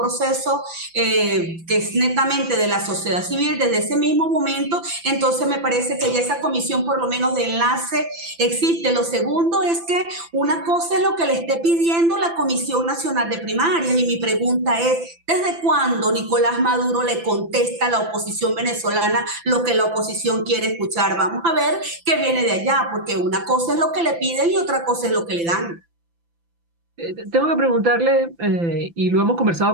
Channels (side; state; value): left; late; 5.9 ms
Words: que es netamente de la sociedad civil, desde ese mismo momento, entonces me parece que ya esa comisión por lo menos de enlace existe. Lo segundo es que una cosa es lo que le esté pidiendo la Comisión Nacional de Primarias, y mi pregunta es, ¿desde cuándo Nicolás Maduro le contesta a la oposición venezolana lo que la oposición quiere escuchar? Vamos a ver qué viene de allá, porque una cosa es lo que le piden y otra cosa es lo que le dan. Tengo que preguntarle, y lo hemos